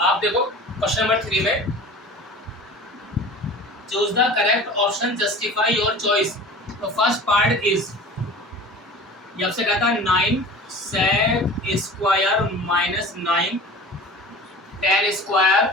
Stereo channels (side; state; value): both; normal; correlation 0.39